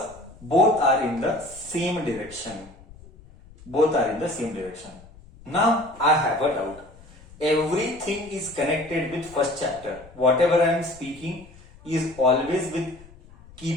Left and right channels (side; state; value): left; noise; rumble, 22 dB below the sound